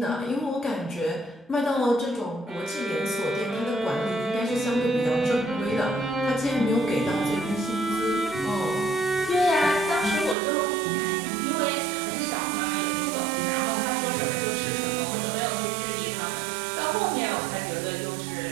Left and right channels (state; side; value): drops out; left; at 10.4 s